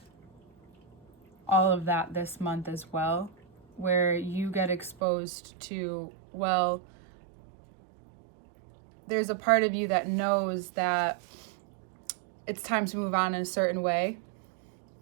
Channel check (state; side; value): drops out; left; at 5.0 s